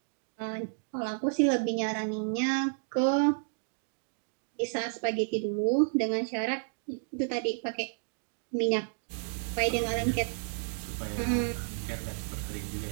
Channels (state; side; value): silent; left; digital silence